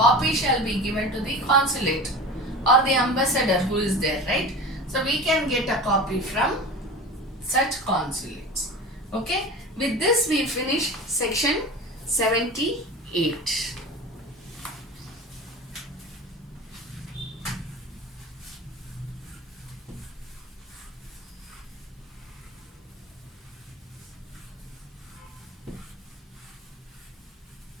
shall be given to the consulate or the ambassador who is there, right? So we can get a copy from such consulates. Okay, with this we finish section 78.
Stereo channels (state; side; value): normal; both; correlation 0.33